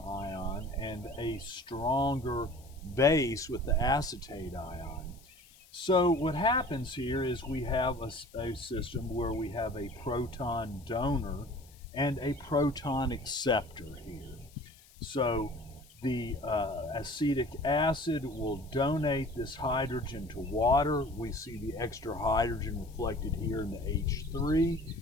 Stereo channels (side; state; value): left; noise; hiss, 26 dB below the sound